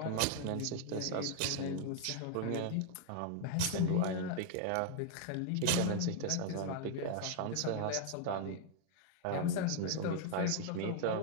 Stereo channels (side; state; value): both; different; correlation 0.00